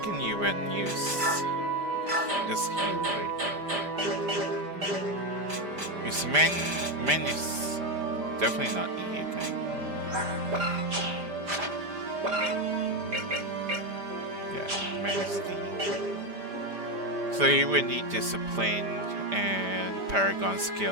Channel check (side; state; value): left; late; 5.0 ms